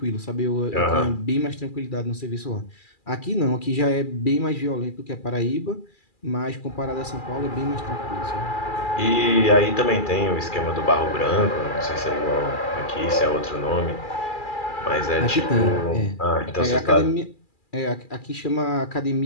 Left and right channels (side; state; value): right; late; 2.4 ms